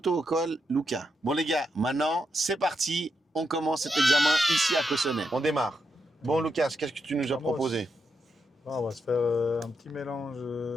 Lucas. Bon les gars, maintenant, c'est parti. On commence cet examen ici à Cossonay. On démarre. Bon Lucas, qu'est-ce que tu nous as proposé? On va se faire un petit mélange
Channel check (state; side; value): normal; both; correlation 0.83